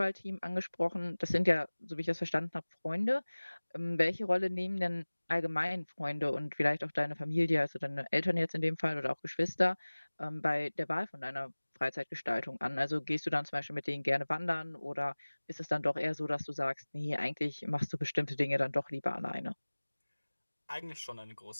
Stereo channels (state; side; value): inverted; both; correlation -1.00